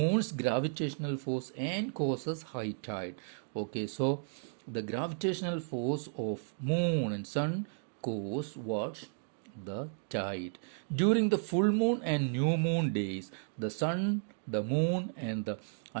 gravitational force and causes high tide. Okay, so the gravitational force of moon and sun cause what? The tide. During the full moon and new moon days, the sun, the moon, and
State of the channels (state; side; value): silent; left; digital silence